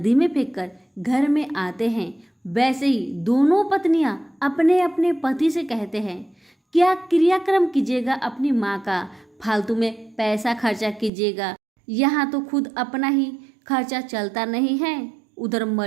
में फेंककर घर में आते हैं, वैसे ही दोनों पत्नियां अपने अपने पति से कहते हैं, क्या क्रियाक्रम कीजिएगा अपनी माँ का, फालतू में पैसा खर्चा कीजिएगा, यहाँ तो खुद अपना ही खर्चा चलता नहीं है, उधर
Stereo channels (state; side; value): drops out; left; at 11.1 s